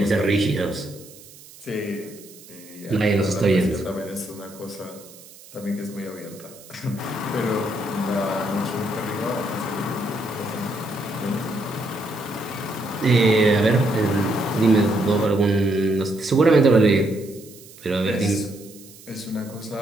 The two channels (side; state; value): right; noise; hiss, 21 dB below the sound